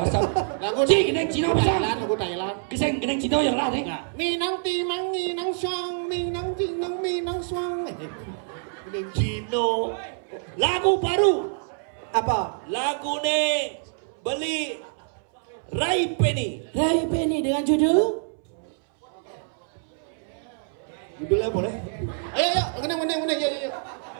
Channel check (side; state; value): left; silent; 61 dB below the other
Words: tuh? Lagu geneng Cina bisa. lagu Thailand. Keseng geneng Cina yang lah nih. Minang timang, minang suang, minang tinang, minang suang. Cino. Lagu baru. Apa? Lagu nih beli Rai Penny. Rai Penny dengan judul Judulnya boleh? Ayo, menang, yuk.